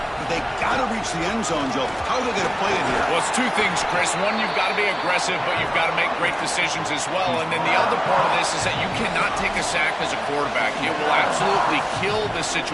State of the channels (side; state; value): both; identical; correlation 1.00